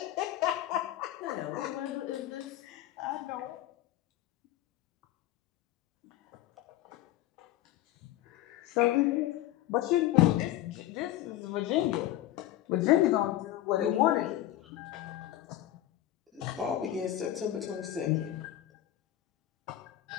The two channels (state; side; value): quieter; right; 13.8 dB